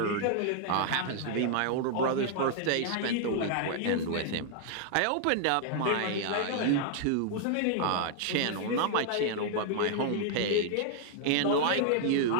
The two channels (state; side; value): different; both; correlation 0.00